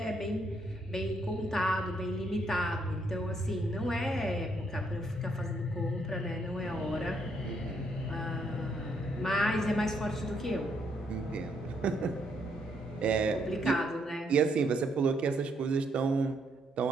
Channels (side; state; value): both; normal; correlation 0.73